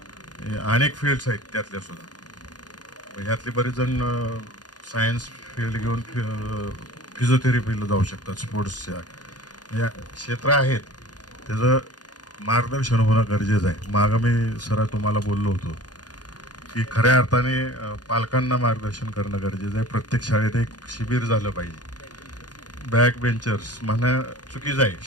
अनेक फील्ड्स आहेत त्यातल्या सुद्धा. ह्यातले बरेच जण सायन्स फील्ड घेऊन फिजिओथेरपीला जाऊ शकतात. स्पोर्ट्सच्या या क्षेत्र आहेत, त्याचं मार्गदर्शन होणं गरजेचं आहे. मागं मी सर तुम्हाला बोललो होतो की खऱ्या अर्थाने पालकांना मार्गदर्शन करणं गरजेचं आहे. प्रत्येक शाळेत एक शिबिर झालं पाहिजे. बॅक बेंचर्स म्हणणं चुकीचं आहे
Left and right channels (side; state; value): right; late; 0.69 ms